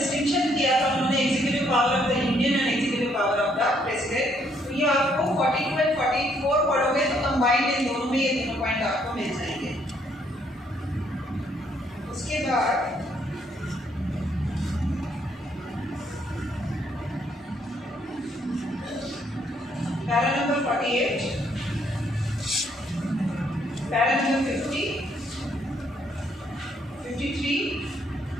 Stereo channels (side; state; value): both; normal; correlation 0.69